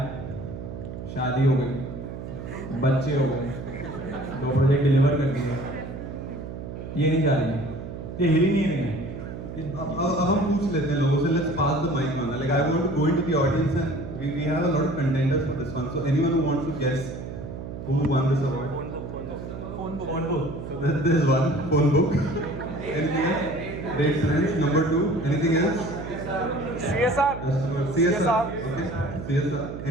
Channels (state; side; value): noise; right; hum, 9 dB below the sound